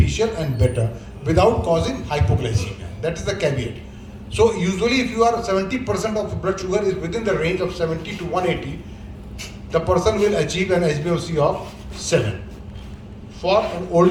and better without causing hypoglycemia. That is the caveat. So usually if you are 70% of blood sugar is within the range of 70 to 180, the person will achieve an HbA1c of 7. For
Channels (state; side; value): identical; both; correlation 1.00